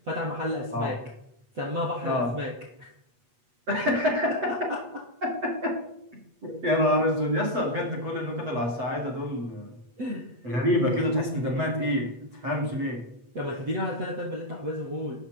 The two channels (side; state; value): left; late; 8.3 ms